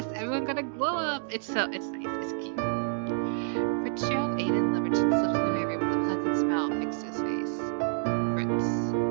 everyone got a glow up. It's nice, it's cute. Fitzgerald Aiden Liberton slipped into my room with a pleasant smile fixed to his face. Fritz.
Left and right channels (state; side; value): silent; left; digital silence